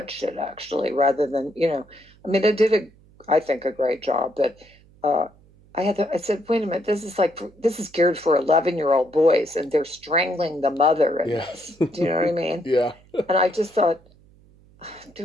it actually, rather than, I mean, I think, a great job, but uh, I said, wait a minute, this is geared for 11-year-old boys, and they're strangling the mother in Yeah. this. Do you know what I mean? Yeah. And I just thought,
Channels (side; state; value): right; noise; hum, 28 dB below the sound